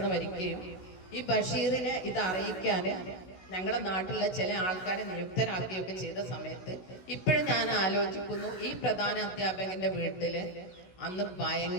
മരിക്കുകയും ഈ ബഷീറിനെ ഇത് അറിയിക്കാന് ഞങ്ങളുടെ നാട്ടിലുള്ള ചില ആൾക്കാരെ നിയുക്തരാക്കുകയൊക്കെ ചെയ്ത സമയത്ത് ഇപ്പോഴും ഞാൻ ആലോചിക്കുന്നു, ഈ പ്രധാന അധ്യാപകന്റെ വീട്ടില് അന്ന്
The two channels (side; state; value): right; late; 16 ms